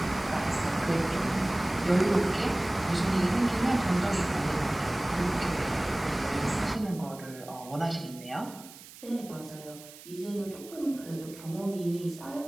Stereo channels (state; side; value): noise; right; hiss, 18 dB below the sound